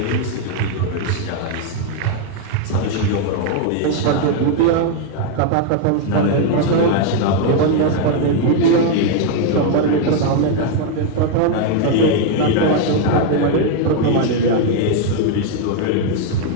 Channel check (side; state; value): both; different; correlation 0.00